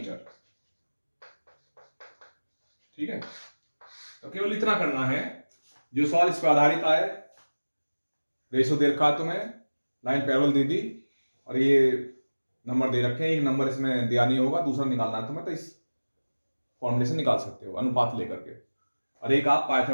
ठीक है। तो केवल इतना करना है, जो सवाल इस पर आधारित आए, रेशो दे रखा तुम्हें, लाइन पैरेलल दे दी और ये नंबर दे रखे हैं, एक नंबर इसमें दिया नहीं होगा, दूसरा निकालना है तुम्हें, तो इस फॉर्मूले से निकाल सकते हो अनुपात लेकर के। और एक आप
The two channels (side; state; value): both; inverted; correlation -1.00